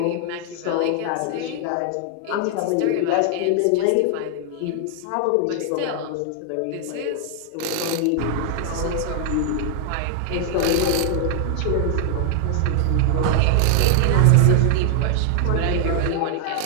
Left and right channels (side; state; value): both; different; correlation 0.00